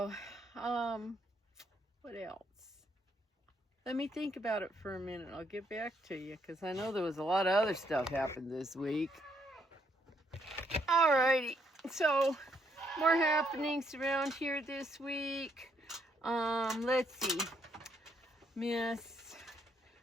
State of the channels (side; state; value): both; normal; correlation 0.73